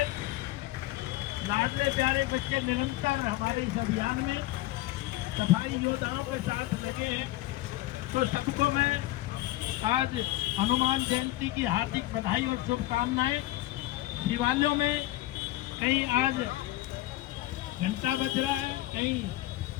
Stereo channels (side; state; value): right; quieter; 17.0 dB